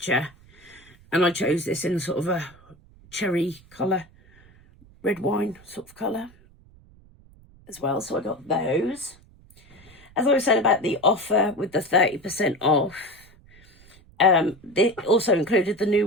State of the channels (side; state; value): right; noise; rumble, 26 dB below the sound